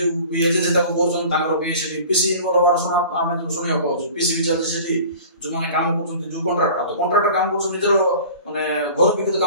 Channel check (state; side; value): inverted; both; correlation -0.42